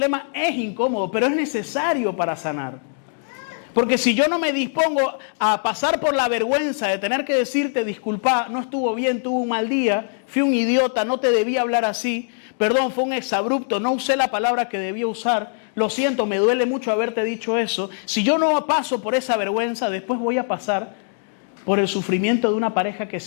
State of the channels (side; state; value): right; silent; digital silence